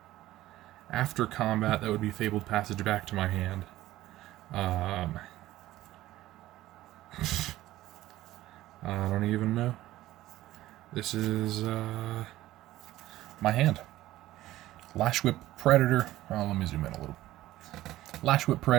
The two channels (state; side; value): quieter; left; 15.6 dB